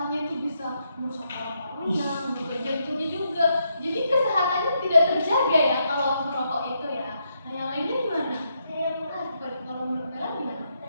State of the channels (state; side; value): inverted; both; correlation -0.79